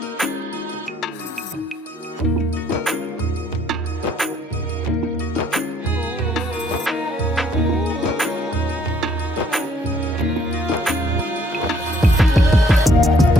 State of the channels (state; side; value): normal; both; correlation 0.64